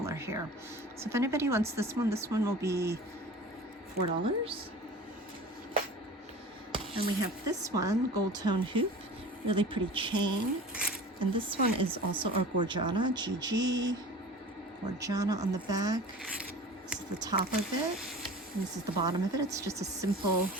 here. So if anybody wants this one will be $4. And we have this one, gold tone hoop, really pretty chain. And this one is also our Gorgiana, GG, Gorgiana on the back. This is the top of it, and this is the bottom of it. It's just a simple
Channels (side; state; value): both; normal; correlation 0.39